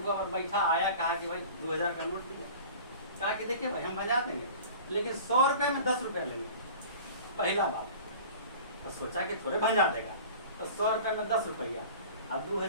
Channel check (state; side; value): inverted; both; correlation -0.41